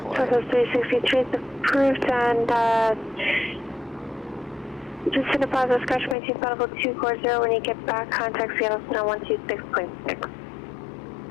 Southwest 363 is approved, and just in a positive scratch, maintain flight level 240. When you get back, contact Seattle Center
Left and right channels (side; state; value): right; drops out; at 6.2 s